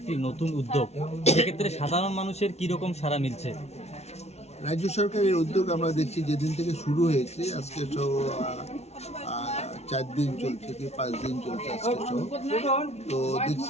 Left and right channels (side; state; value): right; late; 0.31 ms